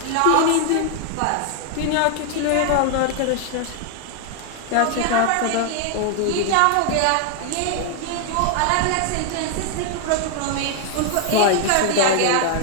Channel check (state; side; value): different; both; correlation 0.00